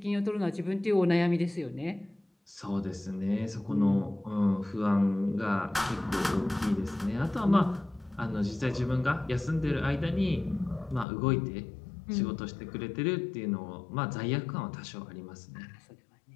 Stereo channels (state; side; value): drops out; right; at 11.1 s